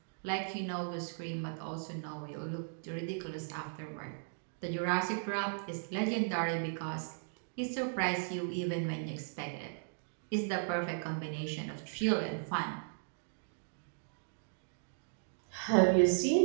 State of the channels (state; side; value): silent; left; digital silence